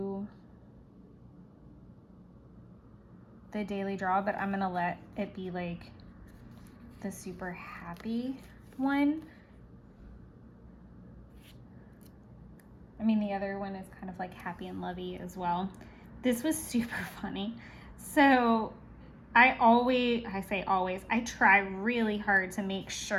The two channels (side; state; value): both; identical; correlation 1.00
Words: the daily draw, but I'm gonna let it be like the super happy one. I mean, the other one is kind of like happy and lovey as well. This was super funny. So I try really hard to make